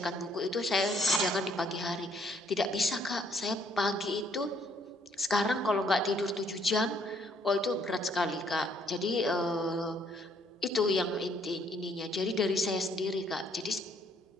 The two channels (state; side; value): normal; both; correlation 0.66